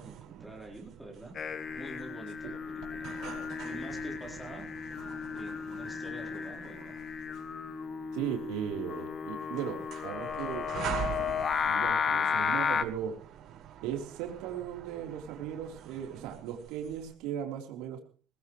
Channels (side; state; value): both; normal; correlation 0.61